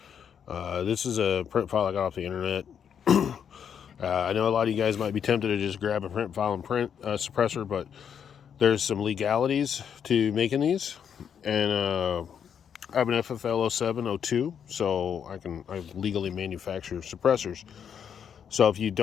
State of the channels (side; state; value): right; quieter; 7.9 dB